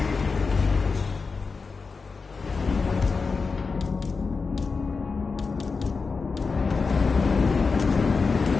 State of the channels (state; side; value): quieter; right; 4.6 dB